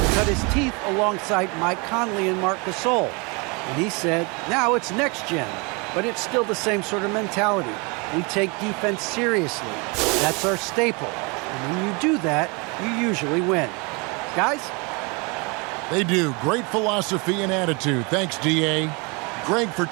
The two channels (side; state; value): left; quieter; 30.0 dB